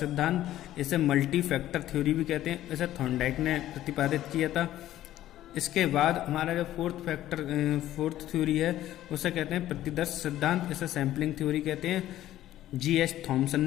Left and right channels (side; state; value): right; quieter; 13.5 dB